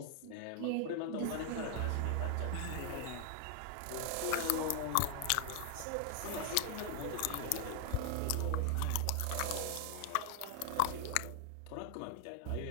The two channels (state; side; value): different; both; correlation 0.00